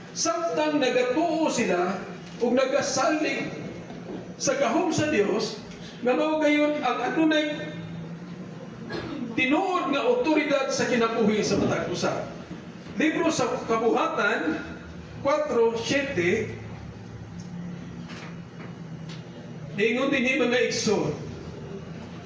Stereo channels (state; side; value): identical; both; correlation 1.00